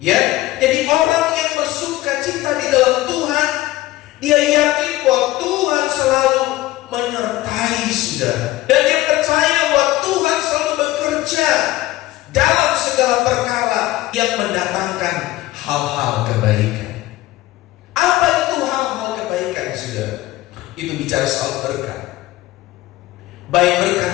Ya, jadi orang yang bersukacita di dalam Tuhan, dia yakin bahwa Tuhan selalu menyertai saudara, dan dia percaya bahwa Tuhan selalu bekerja dalam segala perkara yang mendatangkan hal-hal kebaikan. Apa itu hal-hal kebaikan, saudara? Itu bicara soal berkat, baik berkat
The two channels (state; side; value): quieter; right; 16.9 dB